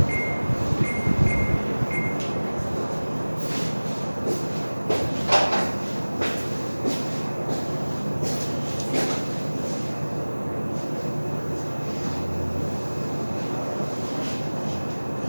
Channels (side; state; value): both; inverted; correlation -1.00